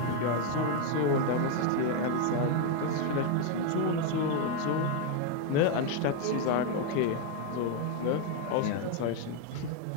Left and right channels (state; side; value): different; both; correlation 0.01